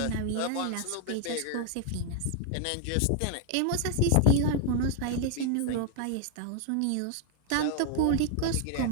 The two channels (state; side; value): different; both; correlation 0.00